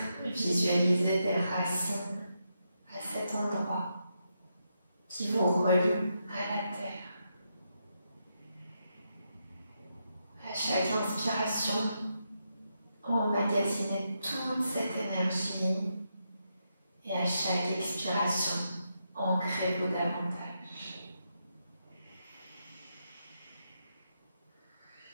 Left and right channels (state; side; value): inverted; both; correlation -0.83